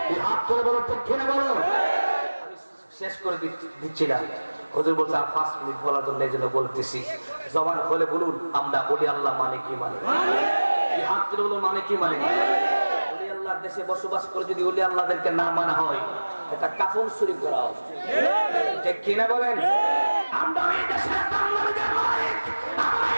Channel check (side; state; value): both; inverted; correlation -1.00